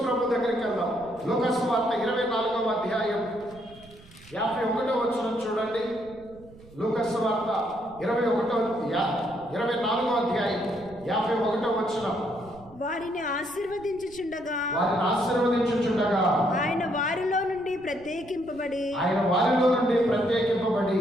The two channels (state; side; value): noise; right; rumble, 22 dB below the sound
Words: ప్రభు దగ్గరికి వెళ్దాం. లూకా సువార్త 24వ అధ్యాయం 51వ వచనం చూడండి. లూకా సువార్త 24వ అధ్యాయం 51వ వచనం. వారిని ఆశీర్వదించుచుండగా ఆయన వారిలో నుండి ప్రత్యేకింపబడి